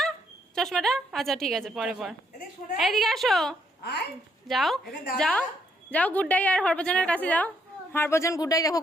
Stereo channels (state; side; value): normal; both; correlation 0.72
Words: চশমাটা আচ্ছা ঠিক আছে, পরে পর। এইদিকে আসো, যাও যাও যাও, গুড্ডাই আর হরভজনের কাছে যাও। হরভজন গুড্ডাই দেখো